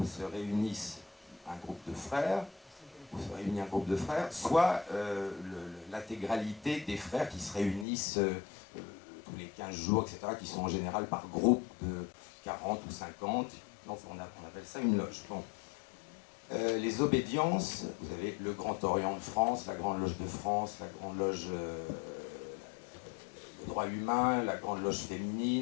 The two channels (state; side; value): drops out; right; at 7.9 s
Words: se réunissent un groupe de frères, soit l'intégralité des frères qui se réunissent tous les 15 jours, etc., qui sont en général par groupe de 40 ou 50. Donc on appelle ça une loge. Bon. Les obédiences, vous avez le Grand Orient de France, la Grande Loge de France, la Grande Loge le droit humain, la Grande Loge